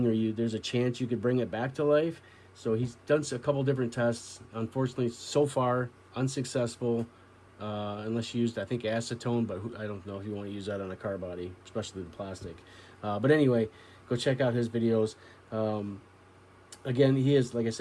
or there's a chance you could bring it back to life. So he's done a couple different tests. Unfortunately, so far unsuccessful. unless you used, I think, acetone, but I don't know if you want to use that on a car body, especially the plastic. But anyway, go check out his videos. Again, he is, like I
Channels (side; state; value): both; identical; correlation 1.00